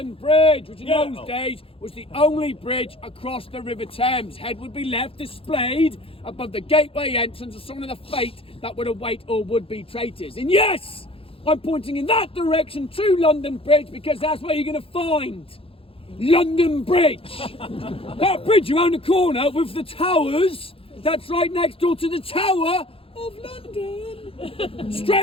Bridge, which in those days was the only bridge across the River Thames. Head would be left displayed above the gateway entrance, a sign of the fate that would await all would-be traitors. And yes, I'm pointing in that direction to London Bridge because that's where you're going to find London Bridge. That bridge around the corner with the towers, that's right next door to the Tower of London.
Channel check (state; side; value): late; right; 0.27 ms